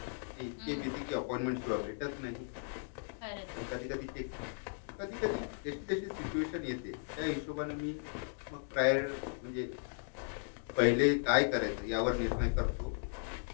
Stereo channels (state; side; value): silent; right; digital silence